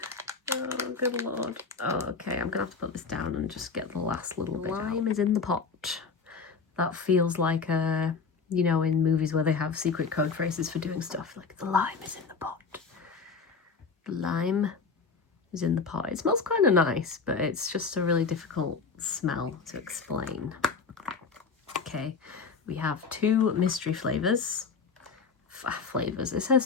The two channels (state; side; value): quieter; right; 5.1 dB